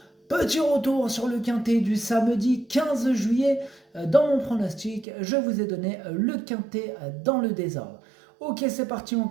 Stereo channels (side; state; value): left; drops out; at 5.1 s